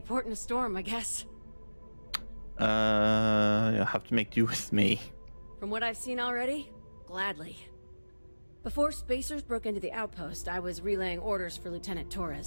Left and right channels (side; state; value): both; inverted; correlation -1.00